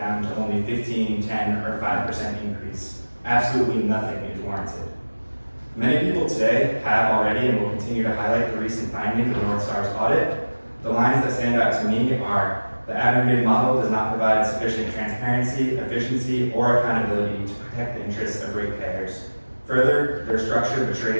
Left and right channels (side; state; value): both; inverted; correlation -1.00